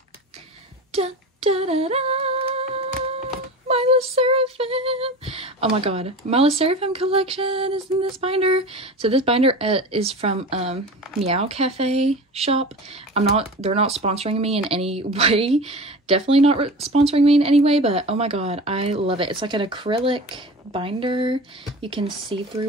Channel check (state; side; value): normal; both; correlation 0.33